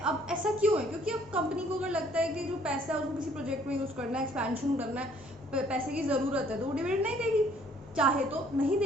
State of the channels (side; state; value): both; normal; correlation 0.61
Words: अब ऐसा क्यों है? क्योंकि अब कंपनी को अगर लगता है कि जो पैसा है उसको किसी प्रोजेक्ट में यूज़ करना है, एक्सपेंशन करना है, पैसे की ज़रूरत है, तो वो डिविडेंड नहीं देगी, चाहे तो नहीं